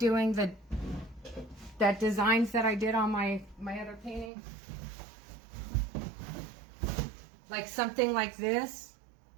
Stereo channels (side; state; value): left; drops out; at 4.3 s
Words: that designs that I did on my other painting, like something like this.